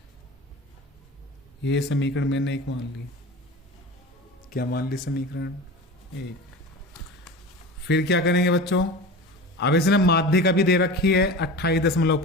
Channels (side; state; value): both; normal; correlation 0.32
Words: ये समीकरण मैंने एक मान ली, क्या मान ली समीकरण एक। फिर क्या करेंगे बच्चों, अब इसने माध्यिका भी दे रखी है